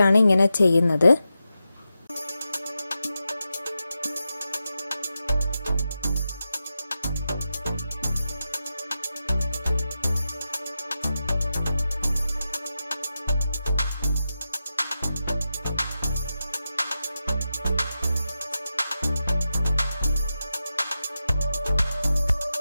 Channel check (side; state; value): both; inverted; correlation -0.90